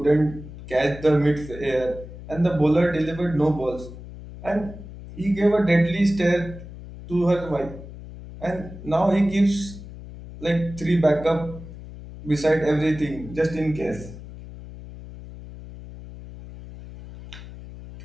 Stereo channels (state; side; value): noise; left; hum, 14 dB below the sound